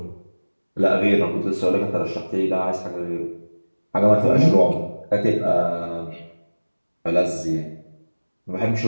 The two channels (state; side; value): inverted; both; correlation -1.00